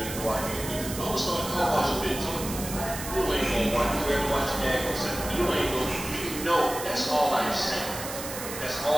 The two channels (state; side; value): noise; right; hiss, 8 dB below the sound